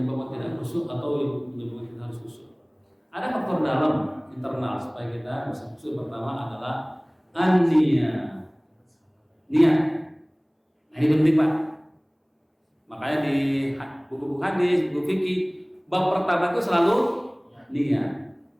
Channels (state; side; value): identical; both; correlation 1.00